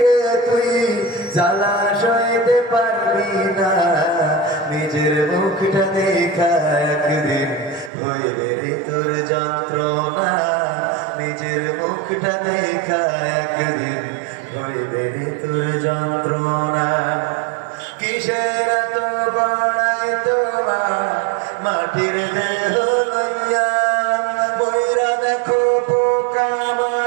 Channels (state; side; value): drops out; left; at 7.9 s